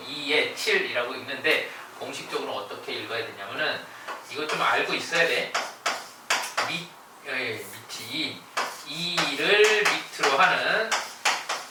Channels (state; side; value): identical; both; correlation 1.00